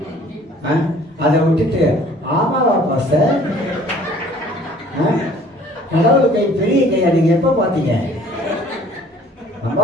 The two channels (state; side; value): normal; both; correlation 0.54